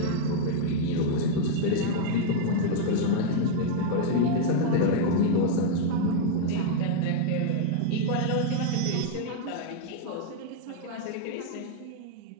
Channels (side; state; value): both; different; correlation 0.00